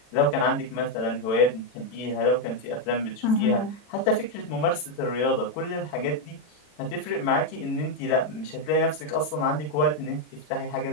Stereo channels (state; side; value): late; right; 40 ms